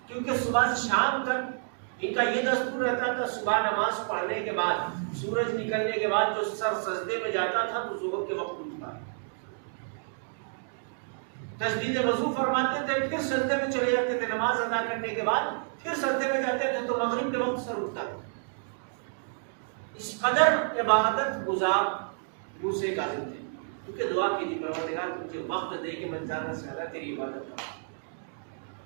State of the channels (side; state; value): left; silent; digital silence